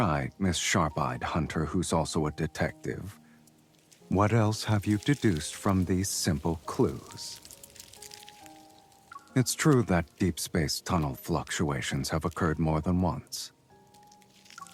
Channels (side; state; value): both; identical; correlation 1.00